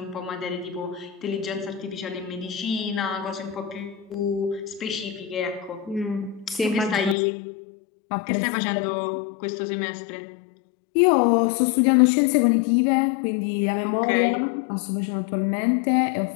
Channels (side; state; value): right; drops out; at 7.2 s